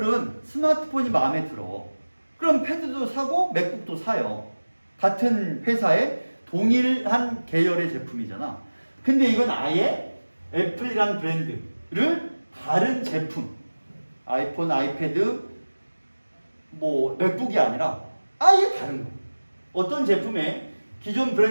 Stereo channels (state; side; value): inverted; both; correlation -1.00